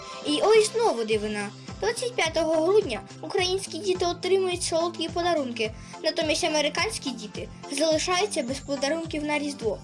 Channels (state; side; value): identical; both; correlation 1.00